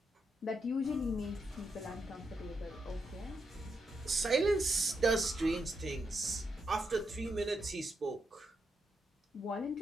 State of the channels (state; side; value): normal; both; correlation 0.83